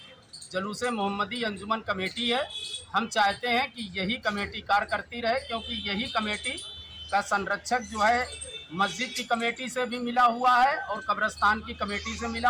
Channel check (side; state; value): both; identical; correlation 1.00